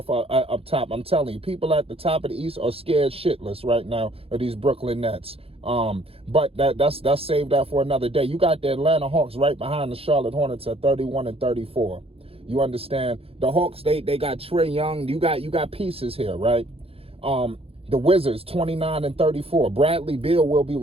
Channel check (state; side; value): late; left; 0.28 ms